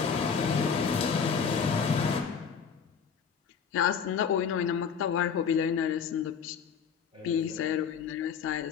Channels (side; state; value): right; quieter; 6.7 dB